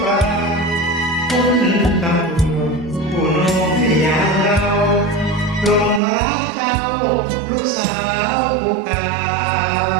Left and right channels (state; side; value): drops out; left; at 6.0 s